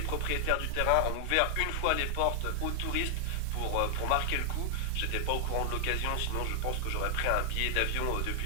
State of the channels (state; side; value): different; both; correlation 0.00